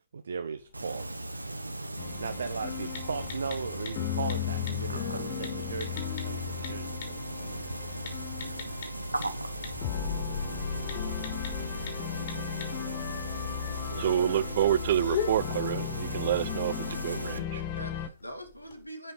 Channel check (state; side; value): inverted; both; correlation -0.52